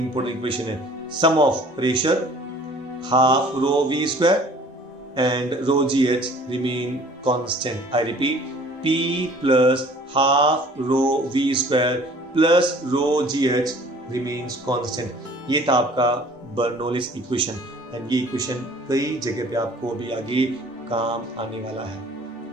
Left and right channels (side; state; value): both; normal; correlation 0.51